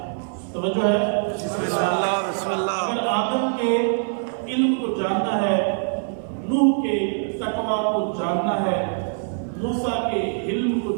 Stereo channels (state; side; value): silent; left; 58 dB below the other